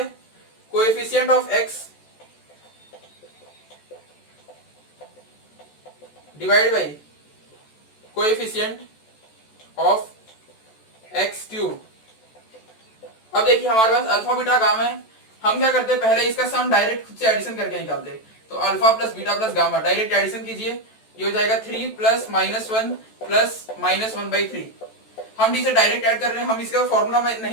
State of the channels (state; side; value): late; right; 14 ms